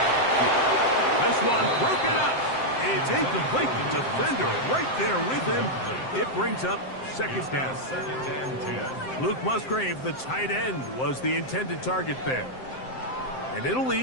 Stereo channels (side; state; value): right; late; 7.7 ms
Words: on the field. This one broken up. It's incomplete. The defender right there with him. It brings up 2nd down. 2nd and 10. Luke Musgrave, the tight end, was the intended target there. And it'll